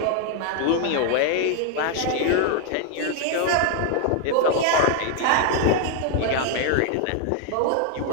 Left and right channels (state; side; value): different; both; correlation 0.00